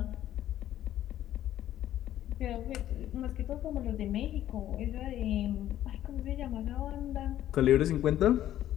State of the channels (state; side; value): quieter; right; 12.4 dB